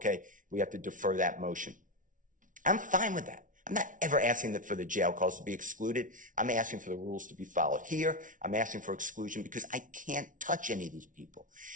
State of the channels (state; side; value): late; left; 0.38 ms